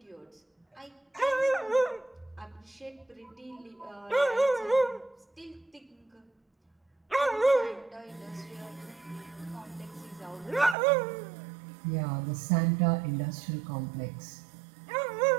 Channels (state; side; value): drops out; left; at 10.8 s